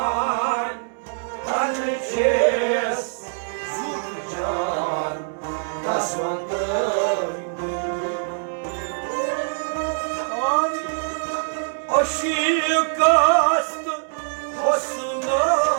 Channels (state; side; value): silent; left; digital silence